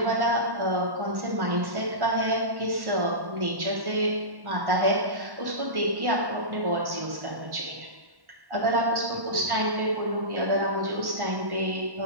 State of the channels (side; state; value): left; late; 1.1 ms